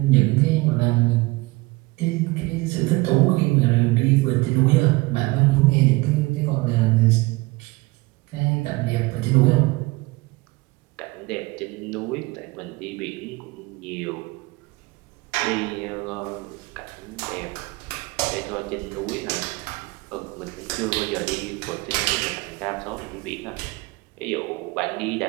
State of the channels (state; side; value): quieter; left; 23.1 dB